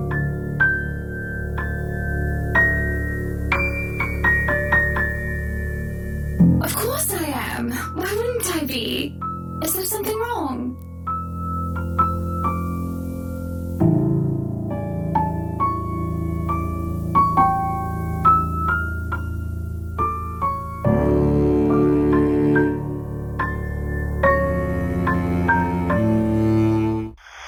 Of course I am. Why wouldn't I be? Is there something wrong?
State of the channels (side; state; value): both; identical; correlation 1.00